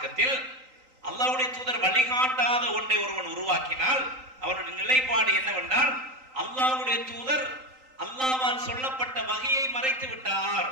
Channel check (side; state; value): left; late; 3.8 ms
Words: அல்லாஹ்வுடைய தூதர் வழிகாட்டாத ஒன்றை ஒருவன் உருவாக்கினால் அவருடைய நிலைப்பாடு என்னவென்றால் அல்லாஹ்வுடைய தூதர் அல்லாஹ்வால் சொல்லப்பட்ட வகையை மறைத்து விட்டார்.